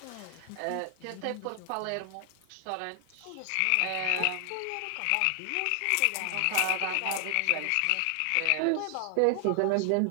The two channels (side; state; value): both; different; correlation 0.00